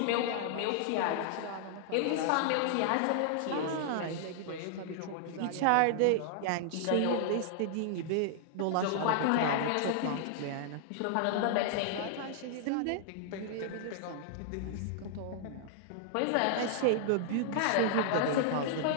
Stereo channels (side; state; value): both; different; correlation -0.01